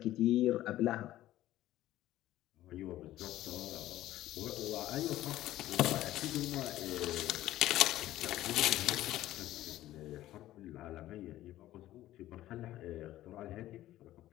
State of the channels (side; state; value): right; quieter; 14.6 dB